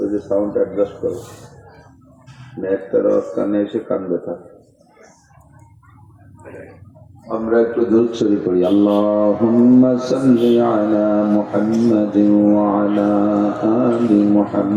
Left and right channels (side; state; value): both; identical; correlation 1.00